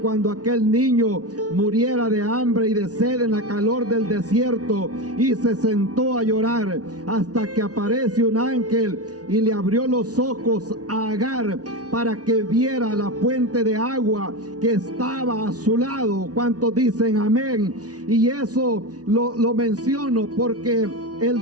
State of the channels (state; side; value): late; left; 0.68 ms